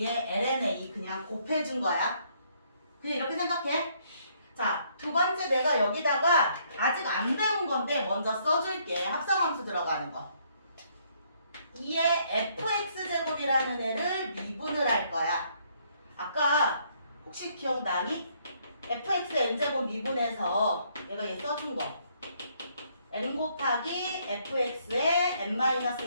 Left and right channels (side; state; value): both; inverted; correlation -0.68